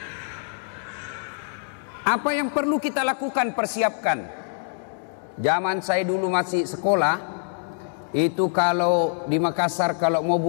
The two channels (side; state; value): right; silent; digital silence